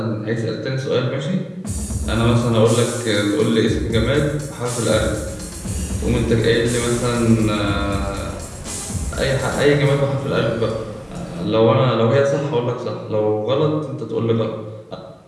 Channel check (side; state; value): both; identical; correlation 1.00